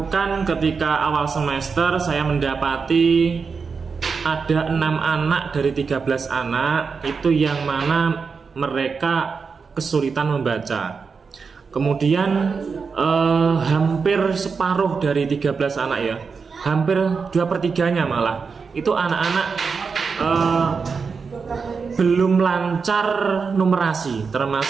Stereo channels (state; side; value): quieter; left; 5.2 dB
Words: ketika awal semester, saya mendapati ada 6 anak dari 13 anak itu yang mana mereka kesulitan membaca. Kemudian hampir separuh dari 13 anak hampir 2/3-nya malah itu anak-anak belum lancar numerasi,